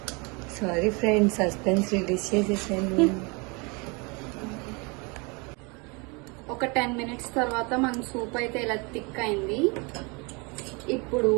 Sorry friends, suspense release చేసేసాను. ఒక 10 minutes తర్వాత మన సూప్ అయితే ఇలా థిక్ అయింది. ఇప్పుడు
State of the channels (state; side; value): quieter; left; 29.8 dB